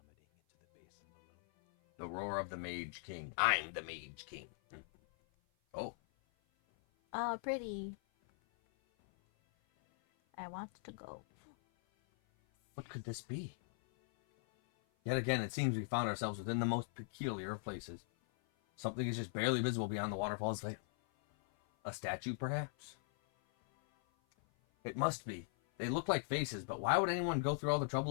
into the basin below? The roar of the Mage King. I'm the Mage King. Oh, Oh, pretty. I want to go. what could this be? Yet again, it seems we found ourselves within the most peculiar of places. Something is just barely visible beyond the waterfall's veil. A statue, perhaps? It must be. They look like faces, but why would anyone go through all the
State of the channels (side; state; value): right; silent; 51 dB below the other